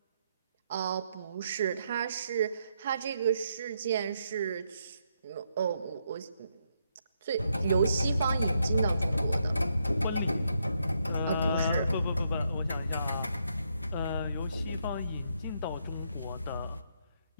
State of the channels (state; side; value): inverted; both; correlation -0.78